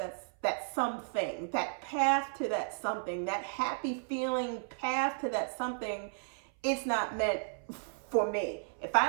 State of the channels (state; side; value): silent; left; 55 dB below the other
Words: something, that path to that something, that happy feeling path to that something, it's not meant for me. If I